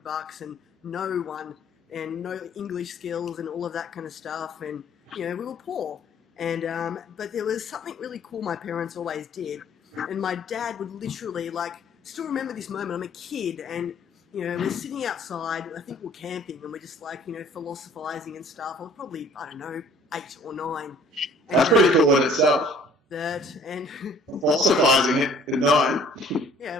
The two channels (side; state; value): both; normal; correlation 0.55